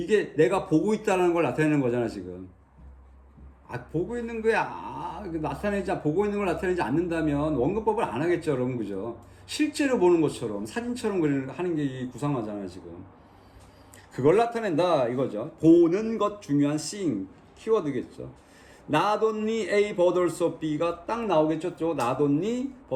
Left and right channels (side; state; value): both; identical; correlation 1.00